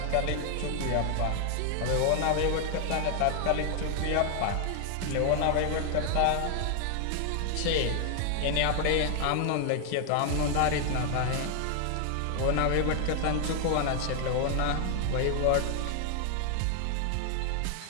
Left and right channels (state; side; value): different; both; correlation 0.00